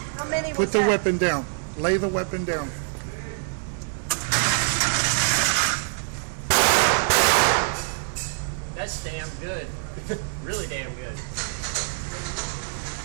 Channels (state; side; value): silent; left; 62 dB below the other